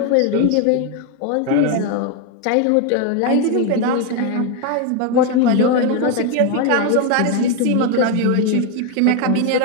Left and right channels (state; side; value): different; both; correlation 0.01